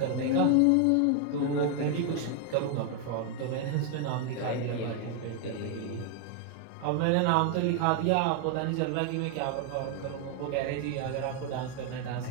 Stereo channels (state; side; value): different; both; correlation 0.01